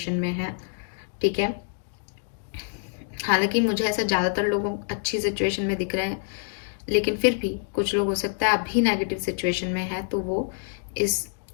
में हैं, ठीक है। हालांकि मुझे ऐसा ज़्यादातर लोगों अच्छी सिचुएशन में दिख रहे हैं, लेकिन फिर भी कुछ लोग हो सकता है अभी नेगेटिव सिचुएशन में है, तो वो इस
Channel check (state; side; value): silent; right; digital silence